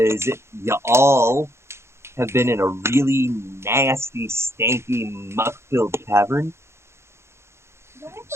you all have been in a really nasty, stanky, muck-filled cavern. Do I have to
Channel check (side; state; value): left; late; 0.13 ms